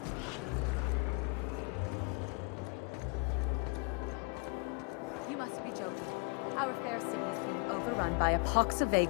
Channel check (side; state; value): right; quieter; 31.5 dB